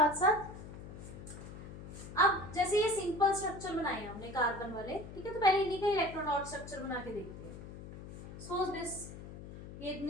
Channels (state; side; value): noise; left; hum, 12 dB below the sound